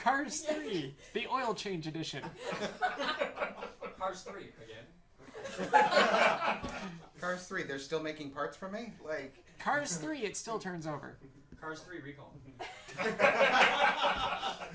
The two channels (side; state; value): both; identical; correlation 1.00